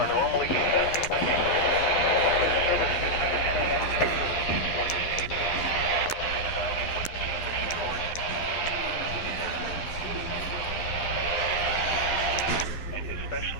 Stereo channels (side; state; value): right; late; 11 ms